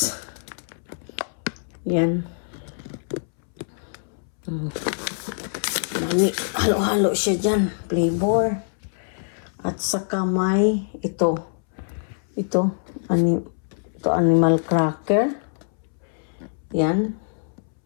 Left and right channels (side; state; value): right; silent; 62 dB below the other